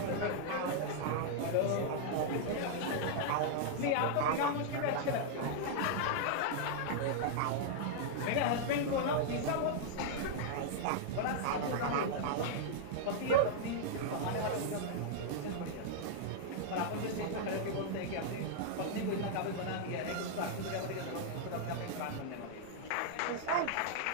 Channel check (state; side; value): different; both; correlation -0.01